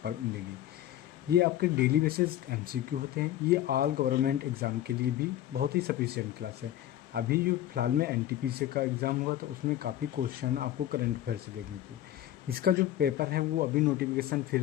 पर मिलेंगी। ये आपके डेली बेसिस एमसीक्यू होते हैं। ये ऑल गवर्नमेंट एग्ज़ाम के लिए भी बहुत ही सफिशिएंट क्लास है। अभी जो फिलहाल में एनटीपीसी का एग्ज़ाम हुआ तो उसमें काफ़ी क्वेश्चन आपको करंट अफेयर से देखने को। इसका जो पेपर है वो अभी नोटिफिकेशन फिर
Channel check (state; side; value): quieter; right; 12.7 dB